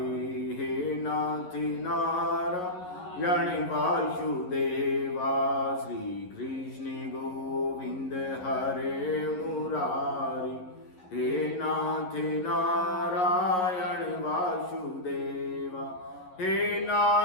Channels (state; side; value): late; right; 11 ms